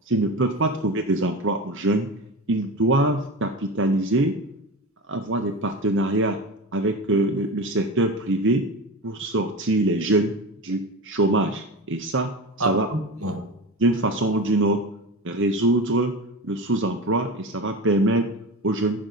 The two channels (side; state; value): both; normal; correlation 0.27